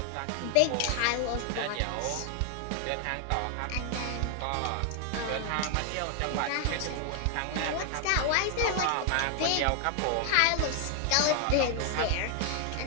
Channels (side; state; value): both; different; correlation 0.00